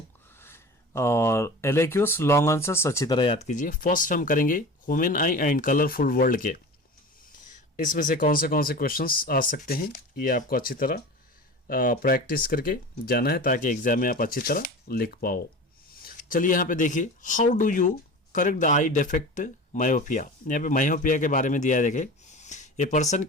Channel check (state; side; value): normal; both; correlation 0.34